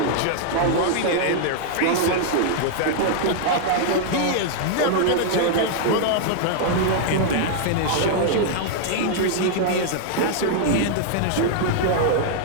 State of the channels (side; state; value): both; different; correlation -0.01